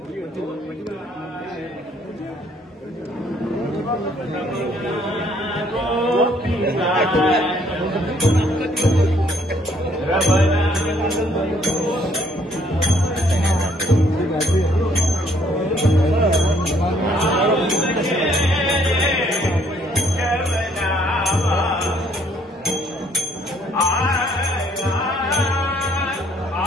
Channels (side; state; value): both; normal; correlation 0.65